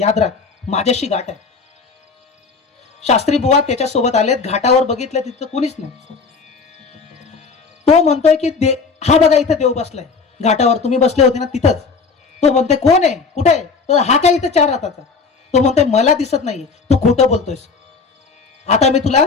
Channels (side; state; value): right; quieter; 4.8 dB